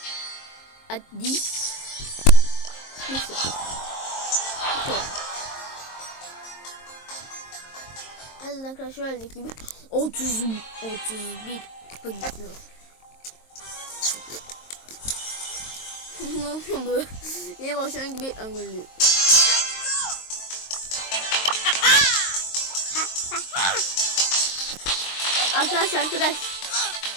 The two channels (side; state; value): right; late; 23 ms